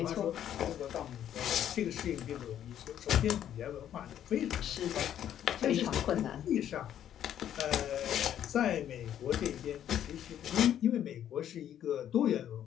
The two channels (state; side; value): quieter; right; 10.5 dB